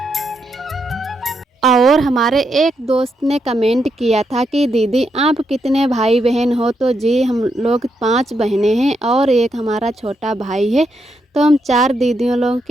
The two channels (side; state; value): both; normal; correlation 0.80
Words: और हमारे एक दोस्त ने कमेंट किया था कि दीदी आप कितने भाई बहन हो? तो जी हम लोग 5 बहनें हैं और एक हमारा छोटा भाई है। तो हम 4 दीदियों लोगों